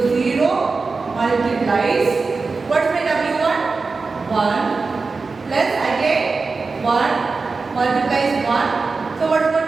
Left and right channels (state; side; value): quieter; left; 4.2 dB